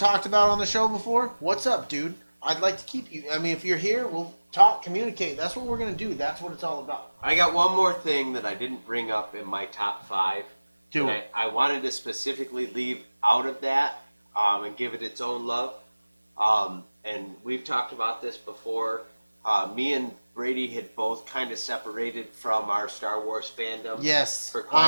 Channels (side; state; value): both; inverted; correlation -1.00